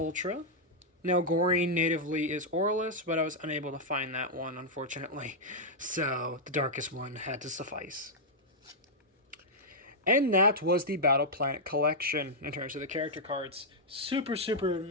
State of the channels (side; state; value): both; normal; correlation -0.06